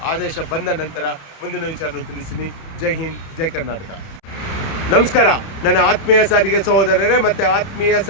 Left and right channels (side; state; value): right; late; 31 ms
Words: ಆದೇಶ ಬಂದ ನಂತರ ಮುಂದಿನ ವಿಚಾರನ ತಿಳಿಸ್ತೀನಿ. ಜೈ ಹಿಂದ್, ಜೈ ಕರ್ನಾಟಕ. ನಮಸ್ಕಾರ. ನನ್ನ ಆತ್ಮೀಯ ಸಾರಿಗೆ ಸಹೋದರರೇ ಮತ್ತು ಆತ್ಮೀಯ